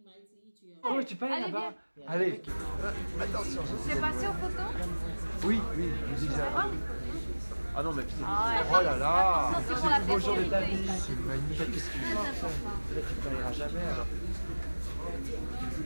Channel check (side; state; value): both; inverted; correlation -1.00